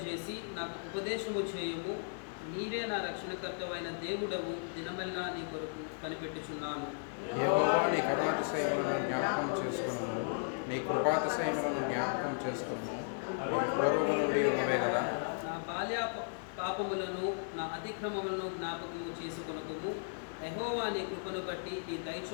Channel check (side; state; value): right; silent; digital silence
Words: నాకు ఉపదేశము చేయుము. నీవే నా రక్షణకర్తవైన దేవుడవు, దినమెల్లా నీ కొరకు కనిపెట్టుచున్నాను. యెహోవా నీ కరుణాతిశయములను జ్ఞాపకం చేసుకొనుము, నీ కృపాతిశయములను జ్ఞాపకం చేసుకొనుము. పూర్వము నుండి ఉన్నవే కదా. నా బాల్య పాపములను నా అతిక్రమములను జ్ఞాపకము చేసుకొనుము. యెహోవా నీ కృపను బట్టి నీ దయ